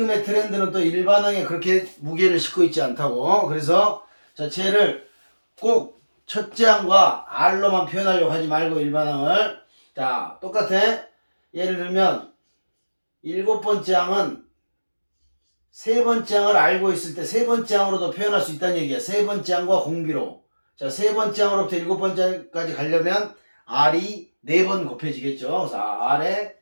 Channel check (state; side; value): inverted; both; correlation -1.00